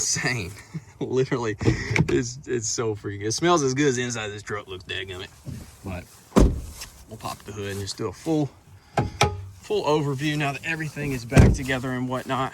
Literally, it's so freaking good. It smells as good as the inside of this truck looks, dadgummit. But we'll pop the hood and just do a full overview now that everything is back together and whatnot.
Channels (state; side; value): identical; both; correlation 1.00